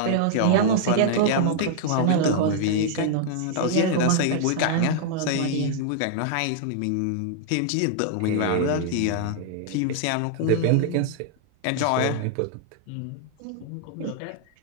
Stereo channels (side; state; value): both; different; correlation -0.01